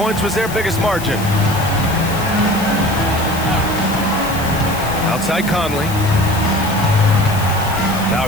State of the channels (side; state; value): left; noise; hiss, 12 dB below the sound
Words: was their biggest margin. Outside Conley. Now